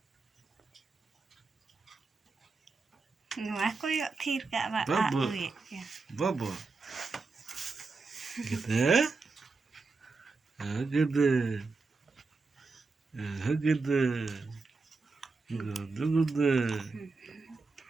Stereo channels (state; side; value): quieter; left; 4.0 dB